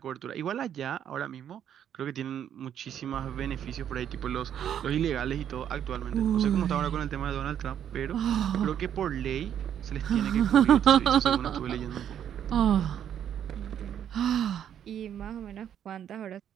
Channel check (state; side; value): quieter; left; 9.6 dB